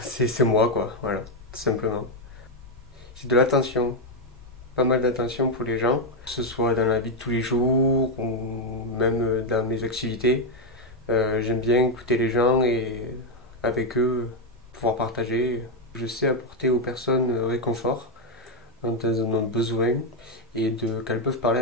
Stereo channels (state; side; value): normal; both; correlation 0.03